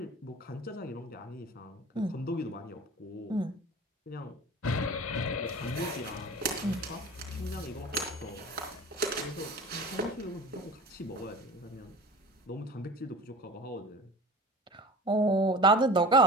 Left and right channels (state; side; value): normal; both; correlation 0.37